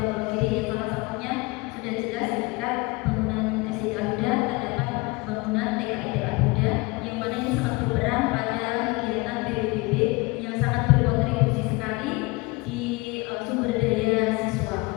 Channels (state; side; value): quieter; right; 25.2 dB